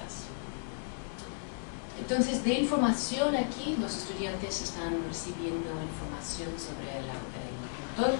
Entonces, de información aquí, los estudiantes están recibiendo información sobre el pintor,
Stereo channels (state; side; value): silent; right; digital silence